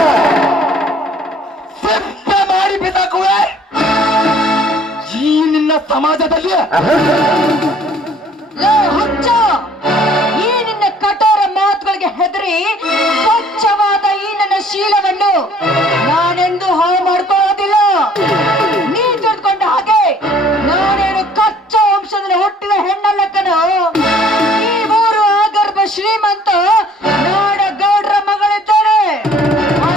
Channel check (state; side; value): normal; both; correlation 0.56